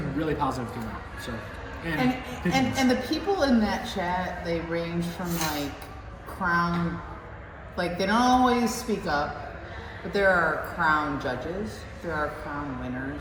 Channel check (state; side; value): identical; both; correlation 1.00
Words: really positive came out. So, And the people in that chat, they range from, like, Crown, like, they don't always speak up, but there are Crown judges, there are Crown